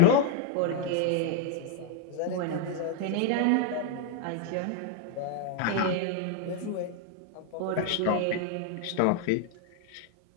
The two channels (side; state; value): both; different; correlation 0.00